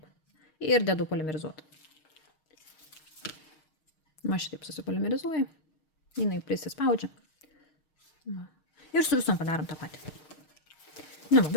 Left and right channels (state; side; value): late; right; 6.4 ms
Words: Ir dedu polimerizuoti. Va šitaip susipolimerizuoju. Jinai prisispaudžia. Va. Ir su visom padarom tą patį. Nu,